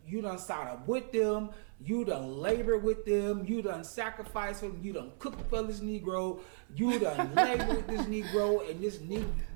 start up with them. You done labor with them. You done sacrifice for them. You done cook for this Negro. You done labor with this Negro and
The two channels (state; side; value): silent; left; 55 dB below the other